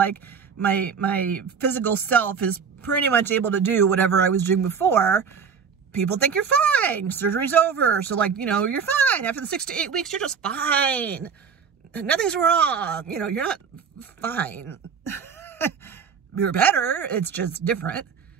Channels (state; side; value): quieter; left; 6.4 dB